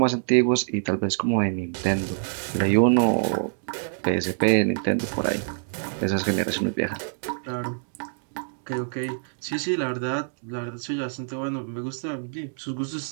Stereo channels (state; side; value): silent; left; digital silence